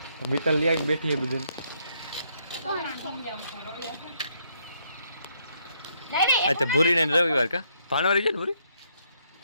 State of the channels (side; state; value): both; inverted; correlation -0.73